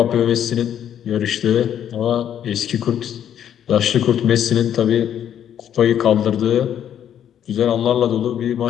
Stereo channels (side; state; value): right; quieter; 9.8 dB